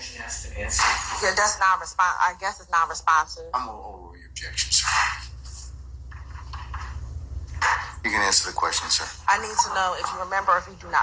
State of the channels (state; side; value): identical; both; correlation 1.00